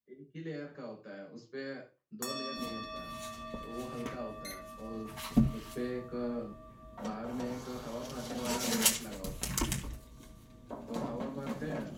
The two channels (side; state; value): both; identical; correlation 1.00